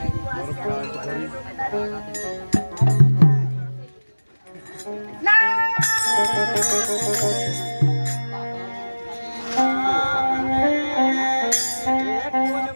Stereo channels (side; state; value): both; inverted; correlation -1.00